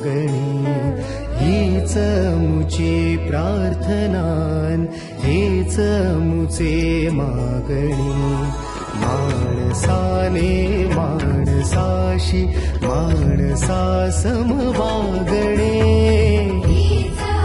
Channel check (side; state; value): both; identical; correlation 1.00